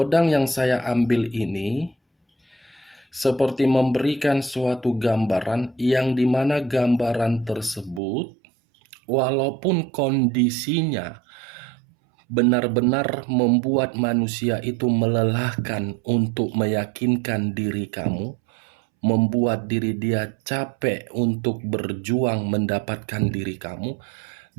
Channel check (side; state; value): left; drops out; at 8.0 s